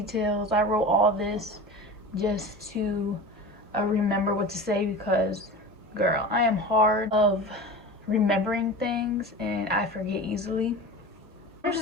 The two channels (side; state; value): both; normal; correlation 0.32